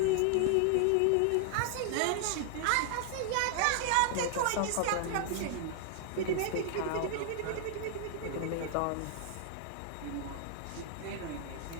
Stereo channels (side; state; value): both; different; correlation 0.00